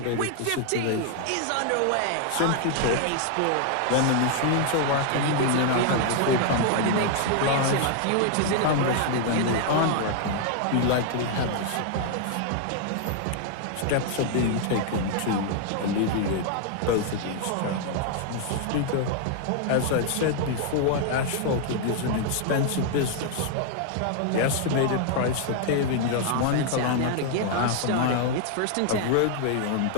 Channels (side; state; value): both; different; correlation 0.00